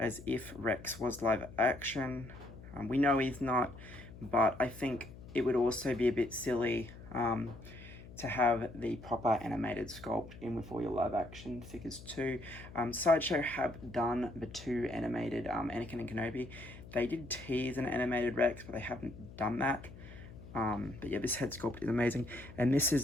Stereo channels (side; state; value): left; noise; hum, 16 dB below the sound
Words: if Rex was live action. We know he's not, but I think it would also be a bit silly to have the proper animated sculpt in with all your live action figures too. Sideshow have done the two animated Anakin and Kenobi. They did tease an animated Rex, but they haven't done that. But yeah, this head sculpt is amazing. And this